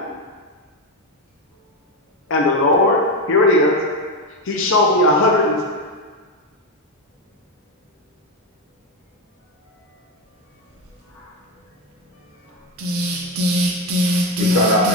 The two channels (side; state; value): both; normal; correlation 0.11